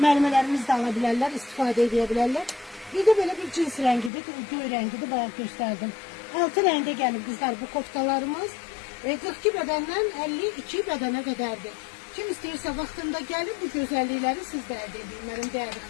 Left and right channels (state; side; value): drops out; right; at 4.1 s